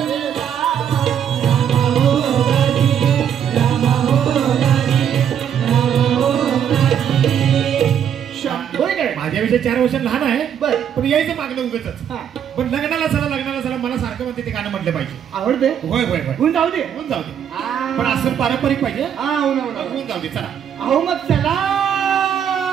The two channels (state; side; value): quieter; left; 8.9 dB